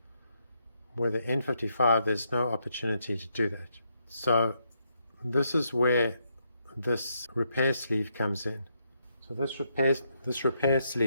with the N55 there's no opportunity to do that. So this is where this repair sleeve comes in. So this repair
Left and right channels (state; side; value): inverted; both; correlation -0.78